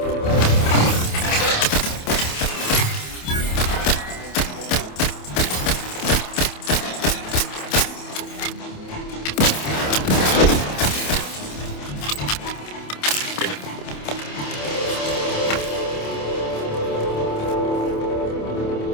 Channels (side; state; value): right; late; 27 ms